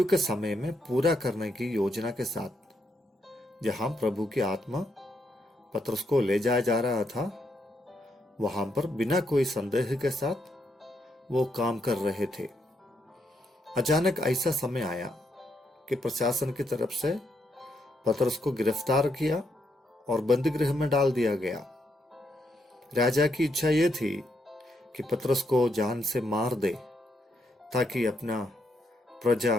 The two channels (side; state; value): both; normal; correlation 0.77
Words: के समय में पूरा करने की योजना के साथ जहां प्रभु की आत्मा पतरस को ले जाया जा रहा था, वहां पर बिना कोई संदेह के साथ वो काम कर रहे थे। अचानक ऐसा समय आया कि प्रशासन की तरफ से पतरस को गिरफ्तार किया और बंदी गृह में डाल दिया गया। राजा की इच्छा यह थी कि पतरस को जान से मार दे ताकि अपना प्रजा